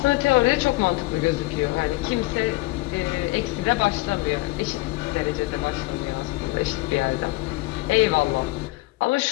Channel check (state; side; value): quieter; right; 21.0 dB